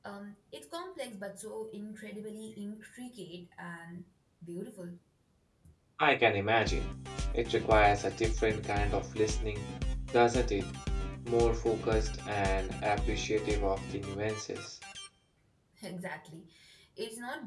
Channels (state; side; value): identical; both; correlation 1.00